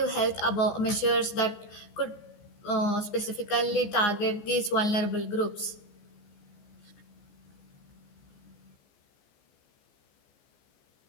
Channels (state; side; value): late; right; 14 ms